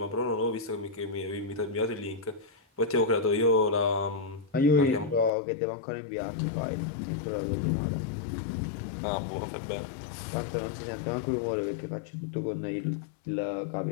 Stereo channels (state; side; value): drops out; right; at 5.3 s